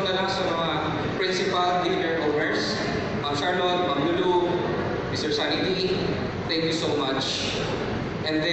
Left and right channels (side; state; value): both; identical; correlation 1.00